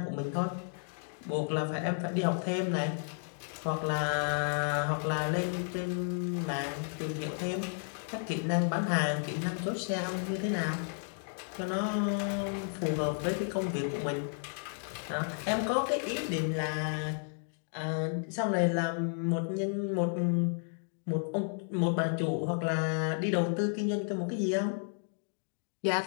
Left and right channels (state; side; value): silent; right; 56 dB below the other